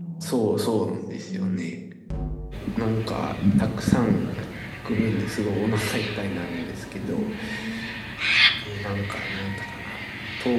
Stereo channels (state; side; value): identical; both; correlation 1.00